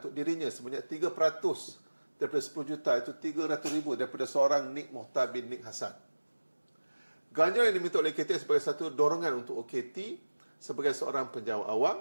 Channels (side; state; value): both; inverted; correlation -1.00